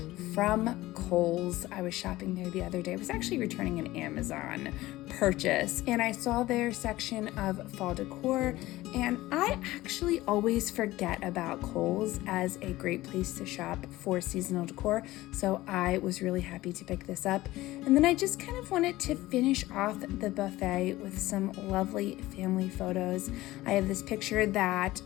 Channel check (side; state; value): right; quieter; 17.4 dB